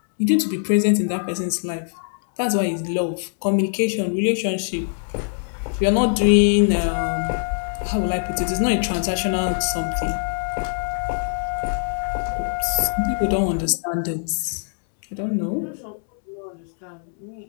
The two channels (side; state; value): right; silent; 64 dB below the other